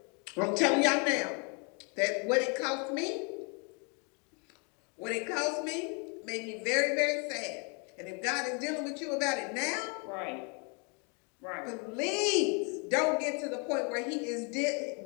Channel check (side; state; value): right; quieter; 34.9 dB